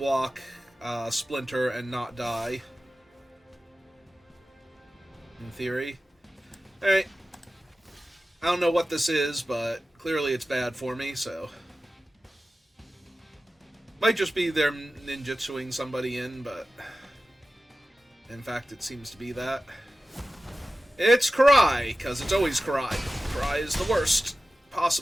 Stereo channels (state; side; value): normal; both; correlation 0.95